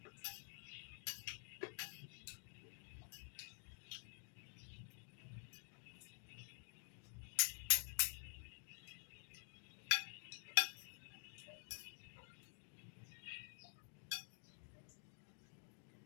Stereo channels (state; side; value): silent; right; digital silence